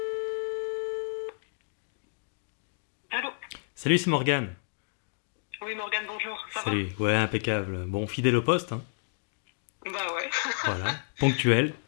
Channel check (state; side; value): silent; right; digital silence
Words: Allô? Salut, c'est Morgane. Oui, Morgane, bonjour. Ça Salut, ouais, impeccable. Bon, fidèle au poste, hein. Bah ouais. Voilà, ponctuel.